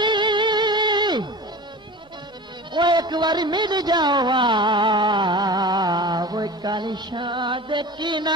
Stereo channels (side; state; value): both; normal; correlation 0.35